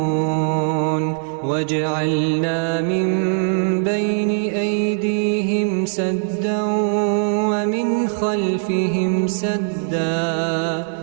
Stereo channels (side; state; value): left; silent; digital silence